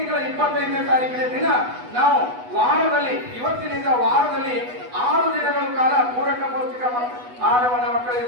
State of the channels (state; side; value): late; left; 8.1 ms